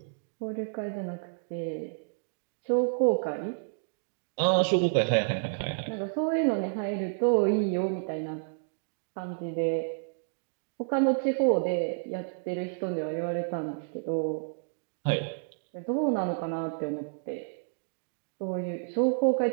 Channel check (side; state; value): left; silent; digital silence